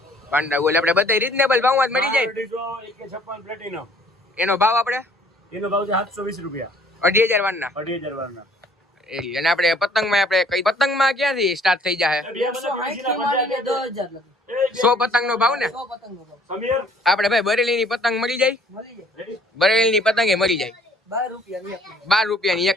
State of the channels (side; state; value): both; normal; correlation 0.58